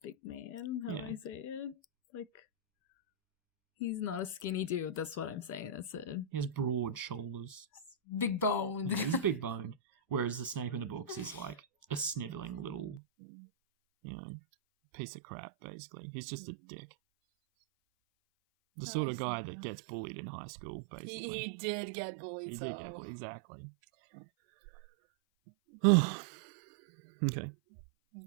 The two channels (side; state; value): left; drops out; at 13.0 s